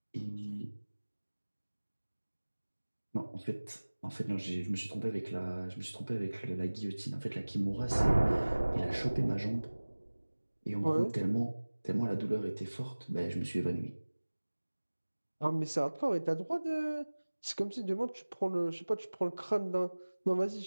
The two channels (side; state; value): both; inverted; correlation -1.00